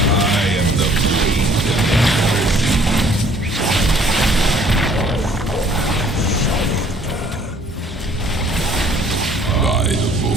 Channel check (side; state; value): both; normal; correlation 0.58